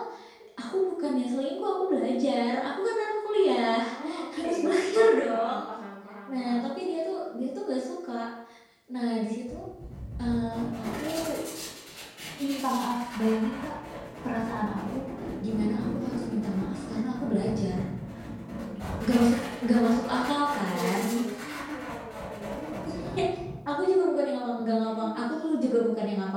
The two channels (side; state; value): both; identical; correlation 1.00